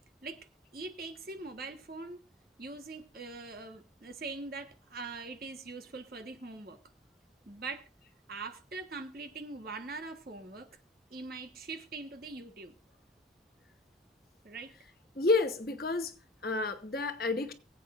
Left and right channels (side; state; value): both; normal; correlation 0.33